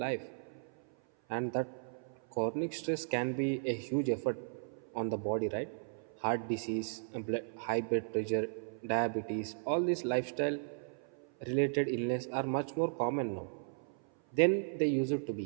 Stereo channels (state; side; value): silent; left; 54 dB below the other